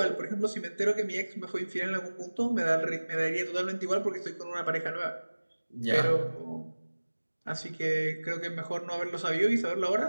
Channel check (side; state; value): both; inverted; correlation -1.00